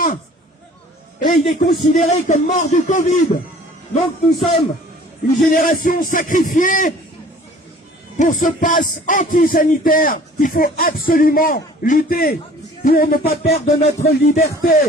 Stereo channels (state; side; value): normal; both; correlation 0.50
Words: Et il est considéré comme mort du Covid. Donc nous sommes une génération sacrifiée pour ce pass anti-sanitaire qu'il faut absolument lutter pour ne pas perdre notre liberté.